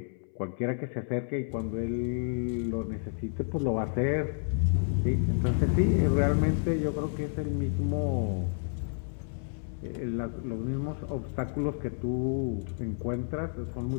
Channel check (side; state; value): right; silent; 58 dB below the other